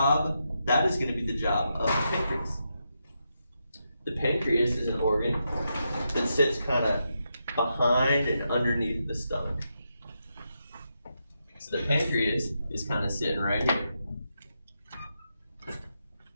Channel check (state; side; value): inverted; both; correlation -0.84